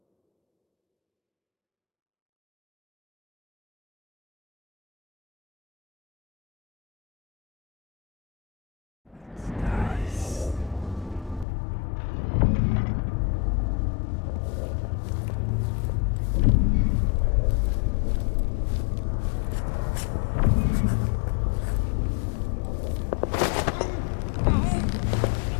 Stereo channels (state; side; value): drops out; right; at 11.5 s